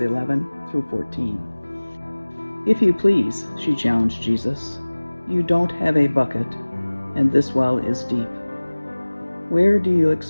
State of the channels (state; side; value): inverted; both; correlation -1.00